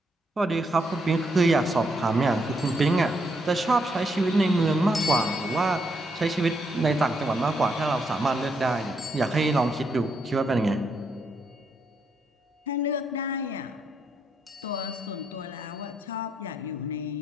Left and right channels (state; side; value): normal; both; correlation 0.77